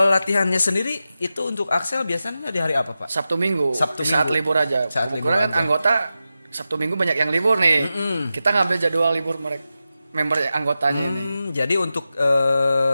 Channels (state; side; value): inverted; both; correlation -0.92